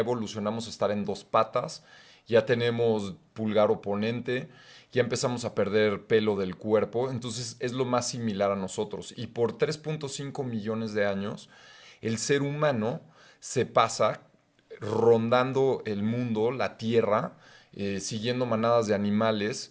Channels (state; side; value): identical; both; correlation 1.00